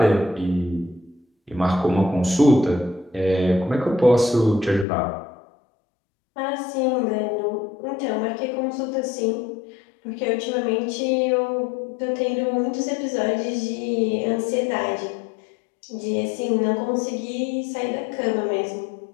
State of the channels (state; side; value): drops out; right; at 4.9 s